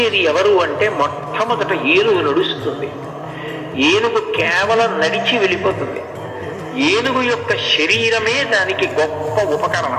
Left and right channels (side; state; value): both; identical; correlation 1.00